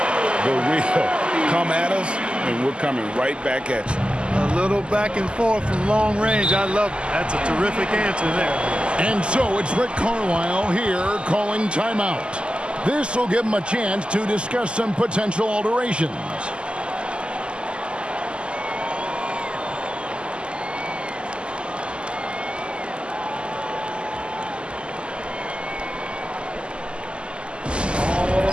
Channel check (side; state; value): left; late; 0.051 ms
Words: The real come at us, and we're coming right back at you. A little back and forth from long range. I love it. That's a terrific answer there. And so it's Rick Carlisle here calling timeout. This will give him a chance to discuss some potential alterations.